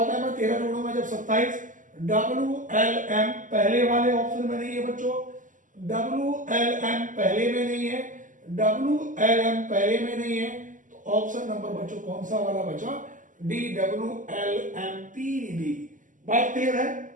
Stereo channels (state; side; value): late; left; 0.38 ms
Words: में 13 जोड़ूंगा जब 27। डब्लू एल एम पहले वाले ऑप्शन में नहीं है बच्चों। डब्लू एल एम पहले में नहीं है, डब्लू एल एम पहले में नहीं है, तो ऑप्शन नंबर बच्चों कौन सा वाला बचा, D W L M P D. बात क्लियर है।